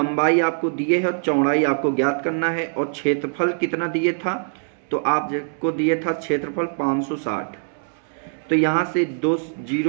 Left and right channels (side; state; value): left; silent; 63 dB below the other